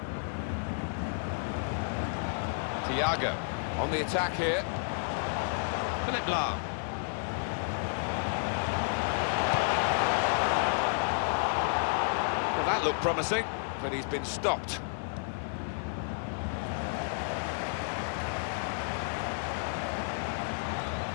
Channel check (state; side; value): silent; right; digital silence